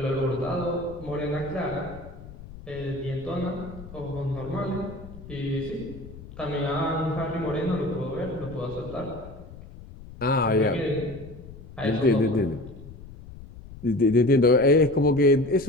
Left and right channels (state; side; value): noise; left; rumble, 16 dB below the sound